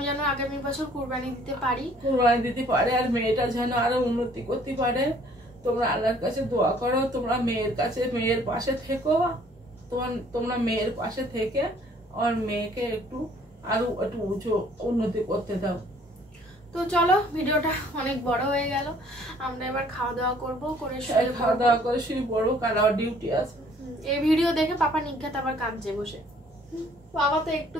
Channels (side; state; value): both; normal; correlation 0.58